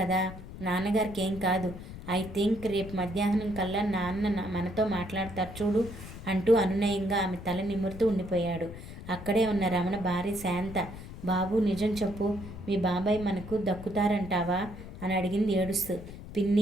నాన్నగారికి ఏం కాదు. ఐ థింక్ రేపు మధ్యాహ్నం కల్లా నాన్న మనతో మాట్లాడతారు చూడు అంటూ అనునయంగా ఆమె తల నిమురుతూ ఉండిపోయాడు. అక్కడే ఉన్న రమణ భార్య శాంత, బాబు నిజం చెప్పు, మీ బాబాయ్ మనకు దక్కుతారంటావా అని అడిగింది ఏడుస్తూ.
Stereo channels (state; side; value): noise; left; rumble, 12 dB below the sound